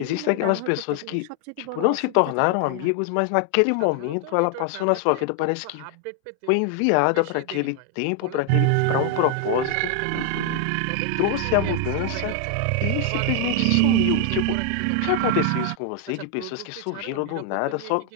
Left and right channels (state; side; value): different; both; correlation 0.00